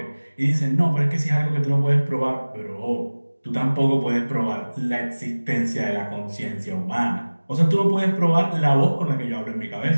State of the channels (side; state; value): both; inverted; correlation -1.00